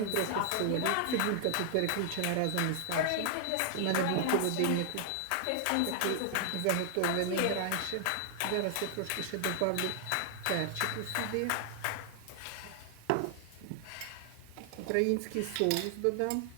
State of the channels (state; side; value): different; both; correlation 0.00